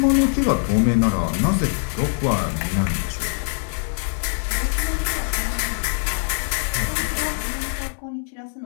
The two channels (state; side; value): silent; right; 57 dB below the other